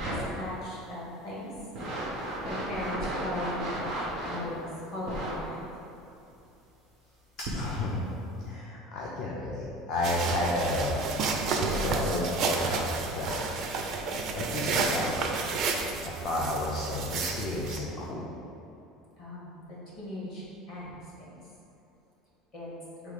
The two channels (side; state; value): both; normal; correlation 0.39